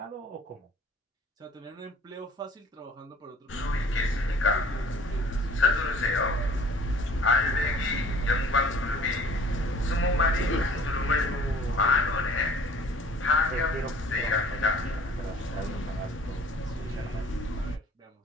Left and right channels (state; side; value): normal; both; correlation 0.51